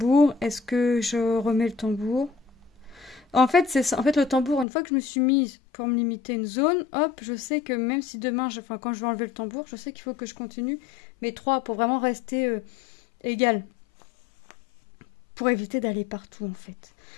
Est-ce que je remets le tambour? En fait, c'est ça. En fait, le tambour, une fois que je me suis mise pour me limiter une zone, hop, je sais que même si demain, enfin, quand je vais enlever le tambour, je sais qu'il faut que je continue mes 3 pour vraiment rester égal. Pour éviter d'aller partout, en fait.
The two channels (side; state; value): right; drops out; at 4.7 s